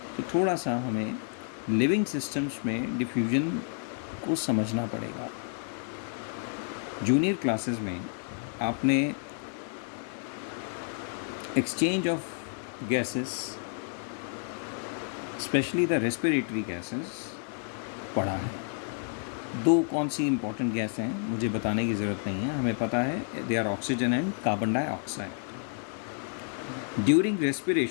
तो थोड़ा सा हमें लिविंग सिस्टम्स में डिफ्यूजन को समझना पड़ेगा. जूनियर क्लासेस में आपने exchange of gases, specially the respiratory gases पढ़ा है. दो कौन सी इंपॉर्टेंट गैस हैं मुझे बताने की ज़रूरत नहीं है, हमें पता है. They are oxygen and carbon dioxide. During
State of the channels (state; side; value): silent; right; 56 dB below the other